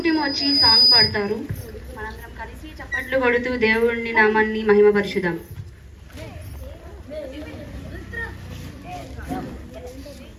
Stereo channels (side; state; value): both; identical; correlation 1.00